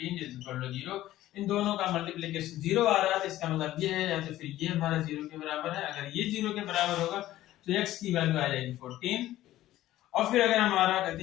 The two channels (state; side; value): quieter; right; 14.6 dB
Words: इज इक्वल टू 0। इन दोनों का मल्टीप्लिकेशन 0 आ रहा है, तो इसका मतलब ये है, या तो फिर ये हमारा 0 के बराबर है, अगर ये 0 के बराबर होगा तो x की वैल्यू आ जाएगी 14, और फिर अगर हमारा